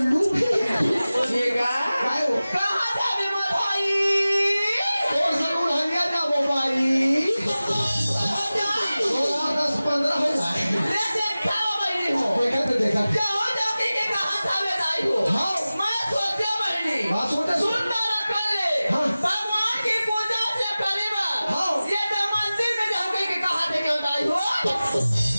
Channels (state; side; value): inverted; both; correlation -0.97